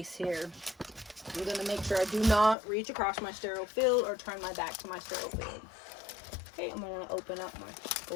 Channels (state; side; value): drops out; right; at 2.6 s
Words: here. I'm going to make sure I do not reach across my sterile field or turn my back to my sterile field. Okay, I'm going to open up my